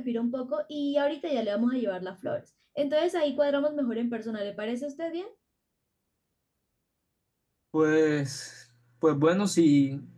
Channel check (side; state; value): both; identical; correlation 1.00